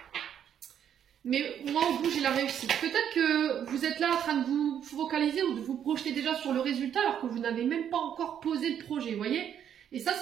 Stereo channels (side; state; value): left; quieter; 9.2 dB